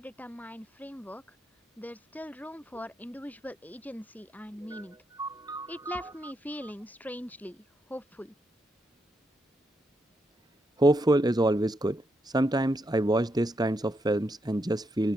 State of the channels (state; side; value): normal; both; correlation 0.81